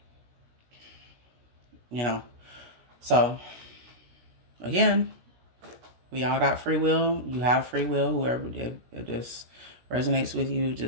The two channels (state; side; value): late; left; 17 ms